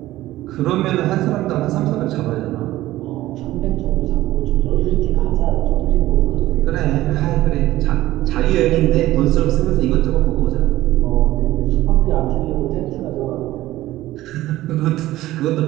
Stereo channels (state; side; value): quieter; left; 15.9 dB